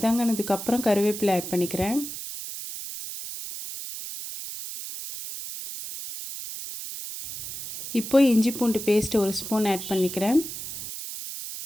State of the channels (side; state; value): right; noise; hiss, 9 dB below the sound